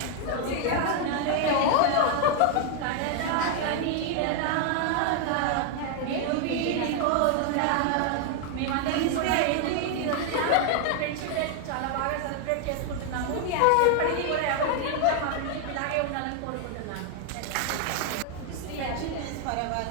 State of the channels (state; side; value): different; both; correlation 0.00